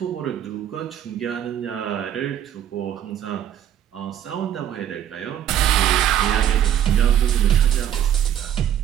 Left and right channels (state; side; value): quieter; left; 10.4 dB